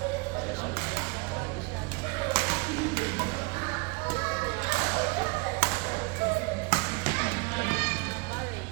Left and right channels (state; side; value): quieter; left; 28.0 dB